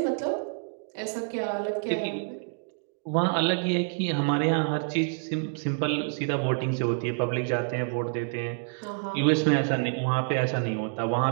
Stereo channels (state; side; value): silent; left; digital silence